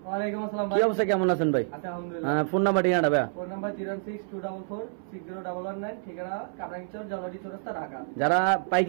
ওয়ালাইকুম আসসালাম ভাই। কি অবস্থা, কেমন আছেন ভাই? আচ্ছা আলহামদুলিল্লাহ। ফোন নাম্বার ঠিকানাটা ভাই? ফোন নাম্বার 01624460119, ঠিকানা কামরাঙ্গীরচর জলরি চৌরাস্তা ঢাকা। যারা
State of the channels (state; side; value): silent; left; 59 dB below the other